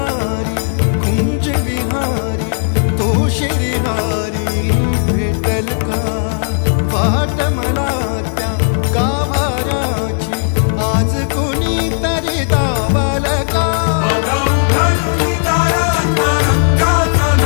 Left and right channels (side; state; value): right; silent; 70 dB below the other